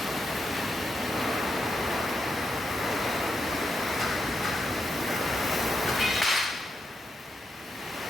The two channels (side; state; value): both; normal; correlation 0.84